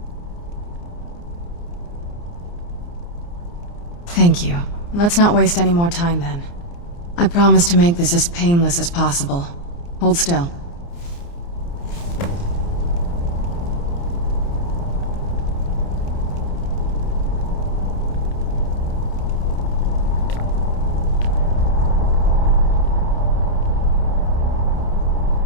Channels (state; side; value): late; right; 29 ms